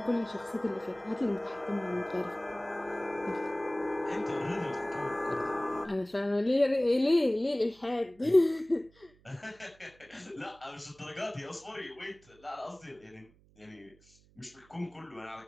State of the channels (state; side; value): noise; right; hum, 29 dB below the sound